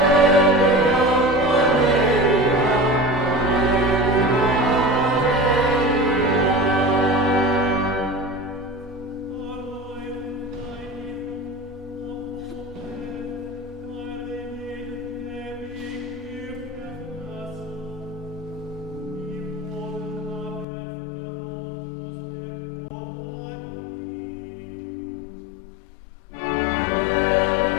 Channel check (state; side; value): drops out; right; at 20.7 s